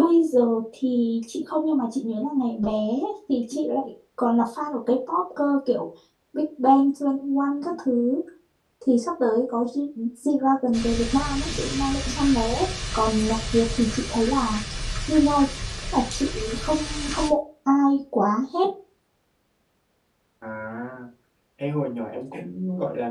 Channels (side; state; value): both; identical; correlation 1.00